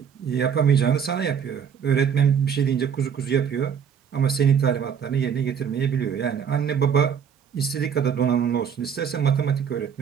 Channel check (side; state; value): left; quieter; 7.6 dB